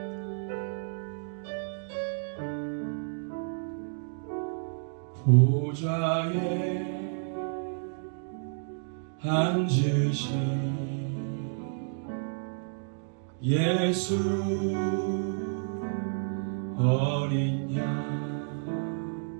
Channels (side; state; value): left; silent; digital silence